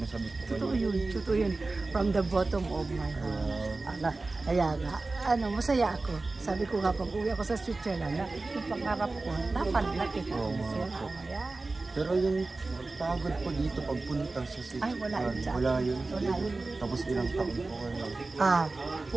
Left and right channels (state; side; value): quieter; left; 3.4 dB